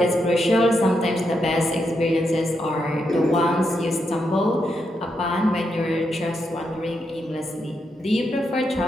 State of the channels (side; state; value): both; normal; correlation 0.82